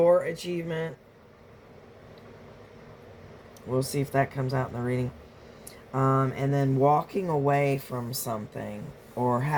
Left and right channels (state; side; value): identical; both; correlation 1.00